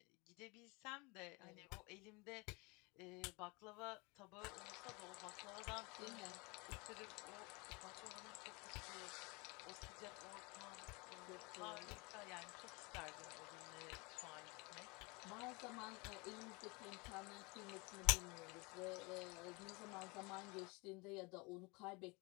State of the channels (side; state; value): right; quieter; 27.5 dB